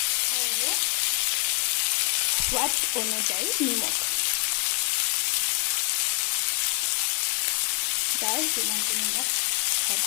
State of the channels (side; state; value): right; quieter; 28.9 dB